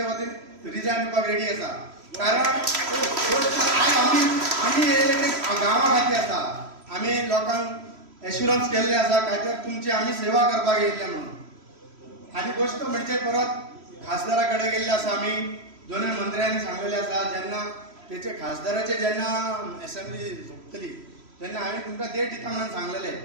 वतीन रिजायन दिवपाक रेडी आसा. कारण आमी येयले ते गांवा खातीर आसा. आमी लोकांक एश्युरन्स केल्ले आसा काय तर तुमची आमी सेवा करपाक येयल्ले म्हणून. आनी गोश्ट म्हणजे परत खासदारा कडेन गेल्ले आसा. आमी दोनूय मंत्र्यांनी सांगलेले आसा जेन्ना तेचे खासदाराचे जेन्ना असेंब्ली झुकतली तेन्ना हांवें तुमकां डेट दिता म्हणून सांगलेले.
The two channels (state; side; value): late; left; 3.1 ms